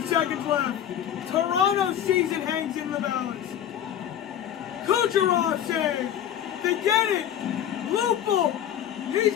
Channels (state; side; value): quieter; right; 10.2 dB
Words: seconds left. Toronto's season hangs in the balance. Kucherov save. They get it. Lupul. He's